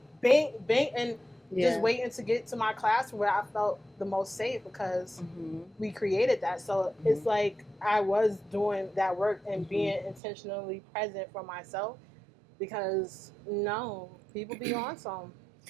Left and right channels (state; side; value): drops out; left; at 10.2 s